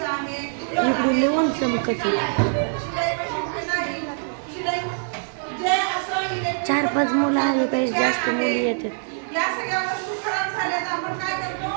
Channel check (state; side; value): silent; left; 63 dB below the other